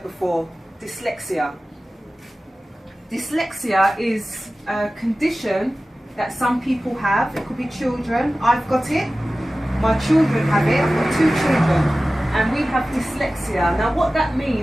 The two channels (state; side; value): normal; both; correlation 0.96